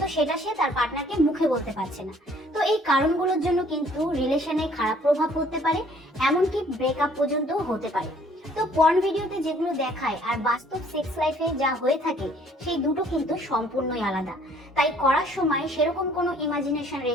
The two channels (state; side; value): normal; both; correlation 0.59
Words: সেটা সে তার পার্টনারকে মুখে বলতে পারছে না। তো এই কারণগুলোর জন্য কিন্তু রিলেশনে খারাপ প্রভাব পড়তে পারে, এমনকি ব্রেকআপ পর্যন্ত হতে পারে। তো পর্ন ভিডিওতে যেগুলো দেখায় আর বাস্তব সেক্স লাইফে যা হয়ে থাকে সেই দুটো কিন্তু সম্পূর্ণই আলাদা। তাই করার সময় সেরকম কোনো ইমাজিনেশন